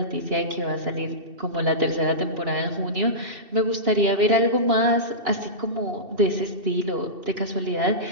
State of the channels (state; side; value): late; left; 2.7 ms